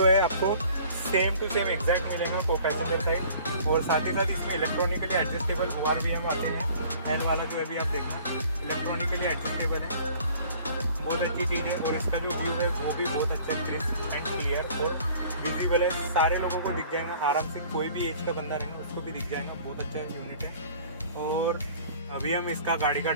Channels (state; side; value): inverted; both; correlation -0.51